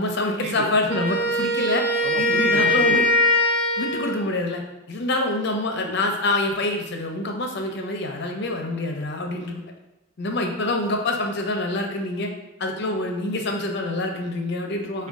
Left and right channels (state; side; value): normal; both; correlation 0.10